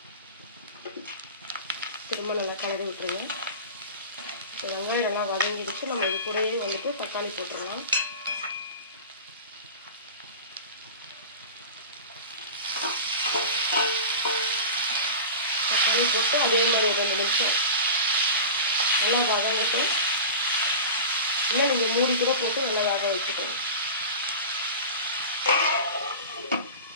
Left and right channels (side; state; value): both; inverted; correlation -0.32